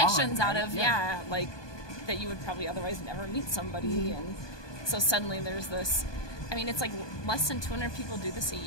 out right? of Yeah. like that you would probably otherwise never meet somebody, and so suddenly there's this. I mean, it's like less than 200 people do this a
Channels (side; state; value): right; late; 1.2 ms